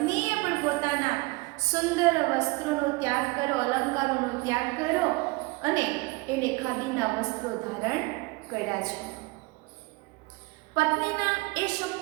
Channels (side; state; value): left; quieter; 24.5 dB